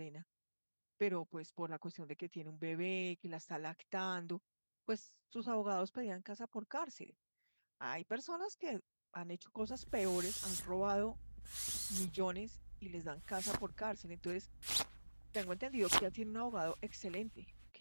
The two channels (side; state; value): both; inverted; correlation -1.00